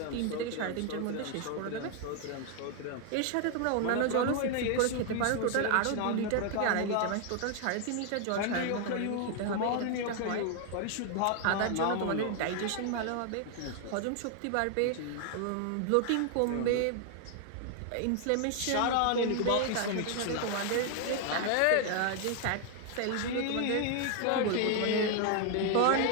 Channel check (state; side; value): different; both; correlation 0.00